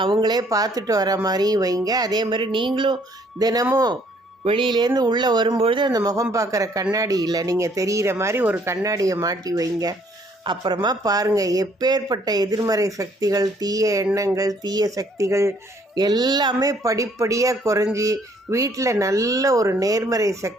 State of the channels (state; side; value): normal; both; correlation 0.63